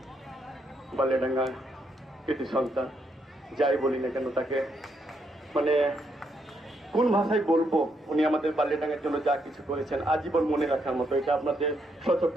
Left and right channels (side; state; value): both; normal; correlation 0.77